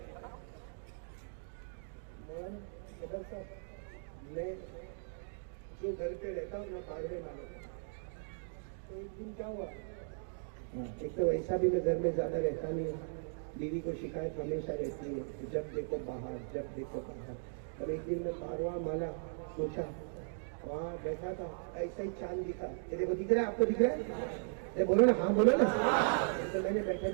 میں جو گھر پہ رہتا ہوں میں پاڑوے والوں, تو ایک دن کیا ہوا, ایک تو ایسا بھی میں گھر میں زیادہ رہتا نہیں ہوں, بیوی کو شکایت ہمیشہ رہتی ہے, جب دیکھو باہر جب دیکھو باہر. اور ایک دن میں پارواں مالا پوچھا, وہاں بیٹھا تھا, ایسا ہی چاند دکھا, یہ دیکھو دکھ رہا ہے, آپ کو دکھ رہا ہے؟ بولو نا, ہاں بولو نا. تو میں نے بیٹھے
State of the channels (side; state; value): left; silent; digital silence